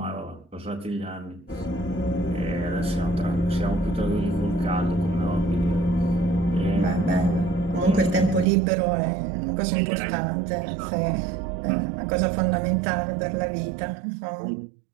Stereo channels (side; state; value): left; drops out; at 8.5 s